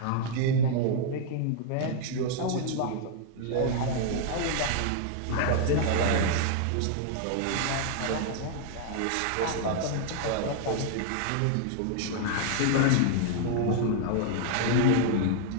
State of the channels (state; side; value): different; both; correlation -0.01